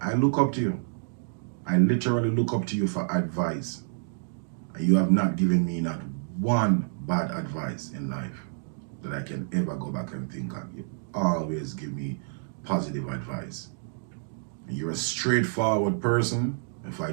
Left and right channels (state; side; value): silent; left; digital silence